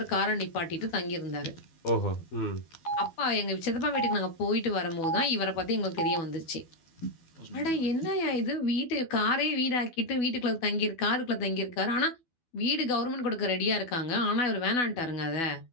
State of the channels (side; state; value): right; late; 12 ms